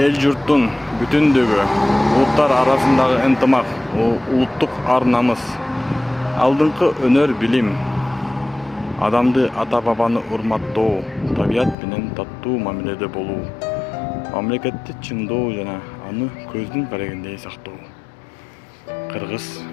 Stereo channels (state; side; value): drops out; right; at 11.8 s